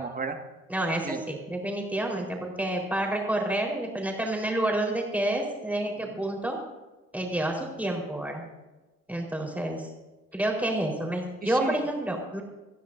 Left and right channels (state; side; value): normal; both; correlation 0.71